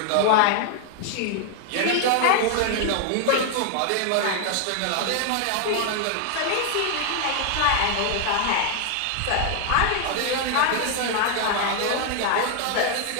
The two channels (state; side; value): different; both; correlation 0.00